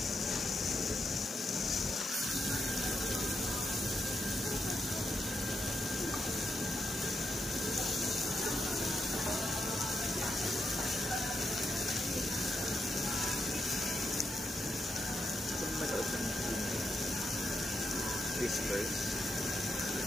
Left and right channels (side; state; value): both; normal; correlation 0.83